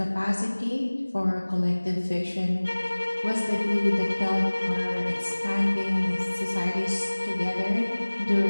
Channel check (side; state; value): both; inverted; correlation -1.00